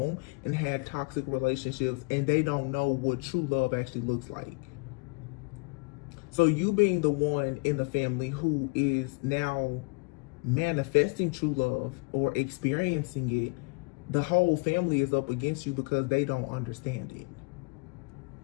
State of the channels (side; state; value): right; quieter; 31.2 dB